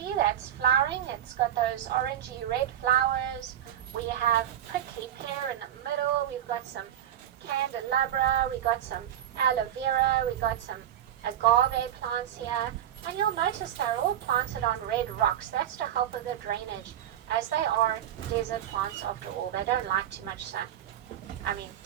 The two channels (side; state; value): left; quieter; 11.0 dB